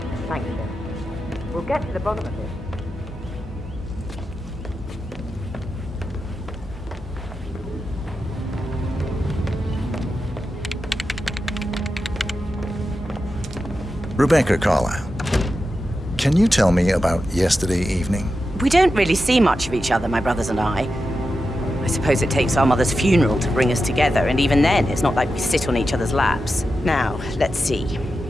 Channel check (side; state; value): both; normal; correlation 0.90